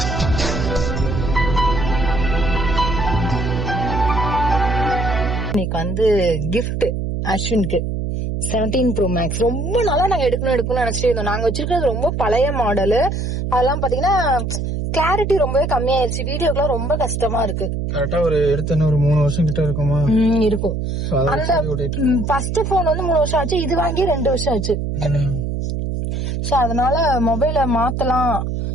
இன்னைக்கு கிஃப்ட் அஸ்வினுக்கு 17 Pro Max. ரொம்ப நாளா நாங்க எடுக்கணும்னு நினைச்சிட்டு இருந்தோம். நாங்க வச்சிருக்கிறது ரொம்ப பழைய மாடலு. அதெல்லாம் பாத்தீங்கன்னா கிளாரிட்டி ரொம்பவே கம்மியாயிருச்சு. வீடியோக்குலாம் ரொம்ப கஷ்டமா இருக்கு. கரெக்டா ஒரு எடுத்து ஒரு 3 வருஷம் கிட்ட இருக்குமா இருக்கும். அந்த ஃபர்ஸ்ட் போன் 3 வருஷம் ஆச்சு, இது வாங்கி 2 வருஷம் ஆச்சு. சோ அதனால மொபைல மாத்தலாம்,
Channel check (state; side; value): noise; right; hum, 2 dB below the sound